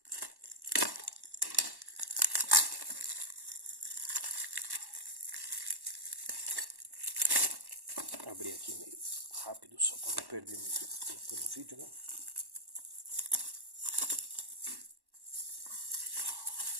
Abrir aqui meio rápido só para não perder muito tempo no vídeo, né?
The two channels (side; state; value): left; late; 1.1 ms